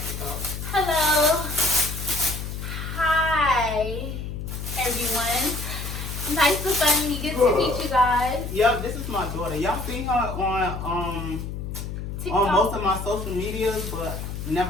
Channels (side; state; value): left; noise; hum, 6 dB below the sound